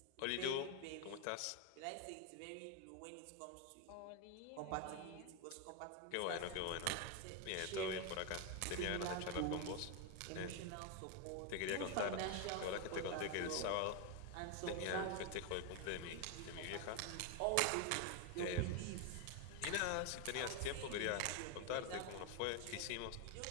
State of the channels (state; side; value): different; both; correlation 0.01